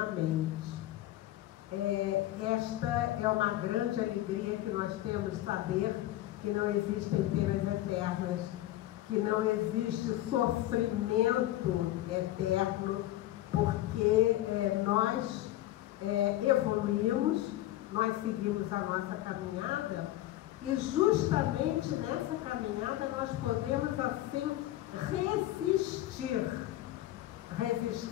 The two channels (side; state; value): right; quieter; 14.9 dB